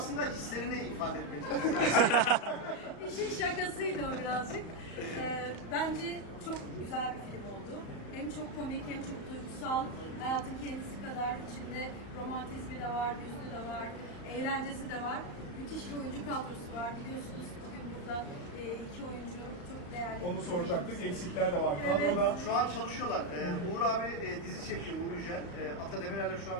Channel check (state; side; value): late; right; 35 ms